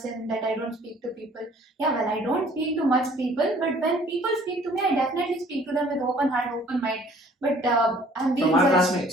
that I don't speak to people. Yeah, well, I don't speak to much people, but when people speak to me, I definitely speak to them with open heart, open mind. But I'm being From our judged.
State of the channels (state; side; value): normal; both; correlation 0.55